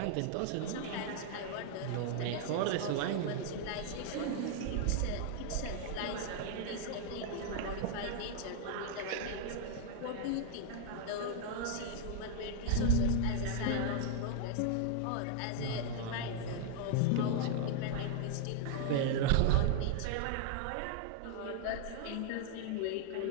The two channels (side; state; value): both; different; correlation 0.00